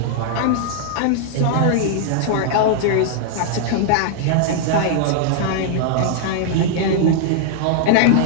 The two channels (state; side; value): different; both; correlation -0.01